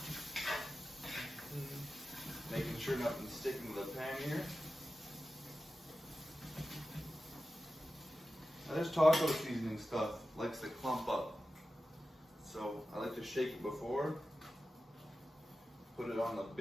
Making sure nothing's sticking to the pan here. Now this taco seasoning stuff likes to clump up, so I like to shake it before, put it on the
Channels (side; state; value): both; normal; correlation 0.93